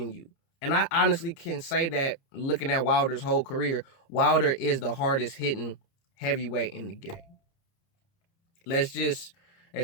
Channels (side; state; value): right; late; 30 ms